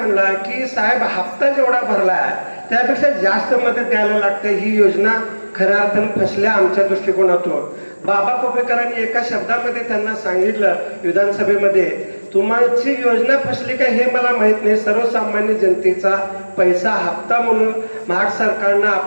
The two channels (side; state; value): both; inverted; correlation -1.00